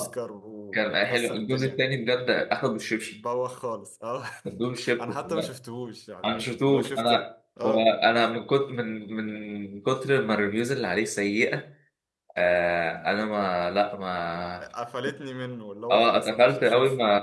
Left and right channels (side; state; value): both; identical; correlation 1.00